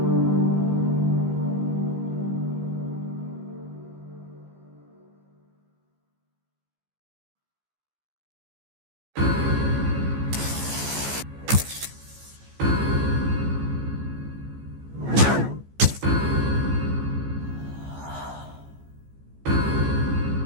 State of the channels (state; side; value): late; left; 15 ms